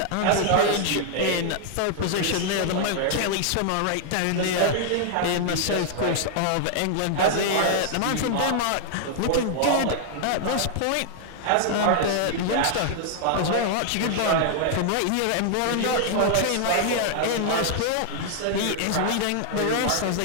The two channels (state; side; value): different; both; correlation 0.00